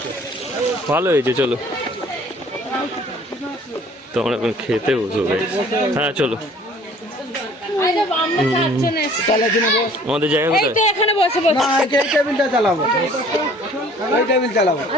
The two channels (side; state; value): both; normal; correlation 0.53